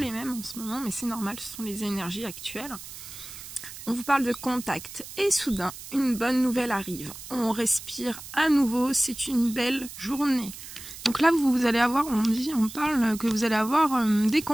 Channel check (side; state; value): right; noise; hiss, 13 dB below the sound